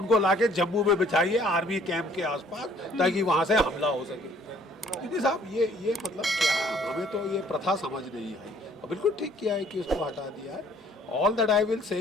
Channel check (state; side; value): normal; both; correlation 0.59